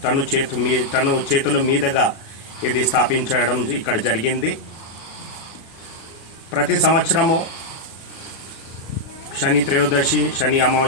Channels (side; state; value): right; late; 37 ms